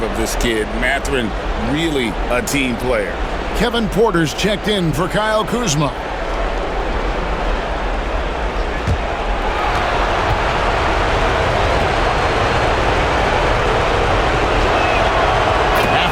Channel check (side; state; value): both; identical; correlation 1.00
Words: of this kid. Mathurin, really a team player. Kevin Porter's checked in for Kyle Kuzma.